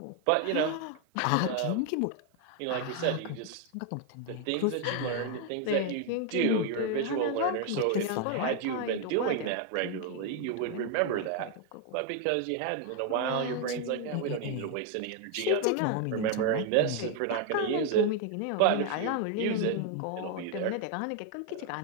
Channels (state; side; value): different; both; correlation 0.01